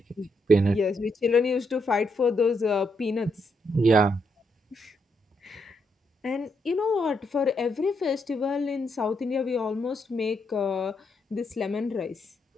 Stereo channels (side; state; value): both; normal; correlation 0.78